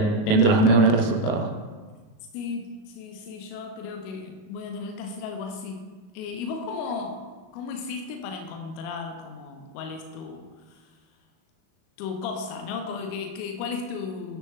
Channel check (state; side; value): late; right; 37 ms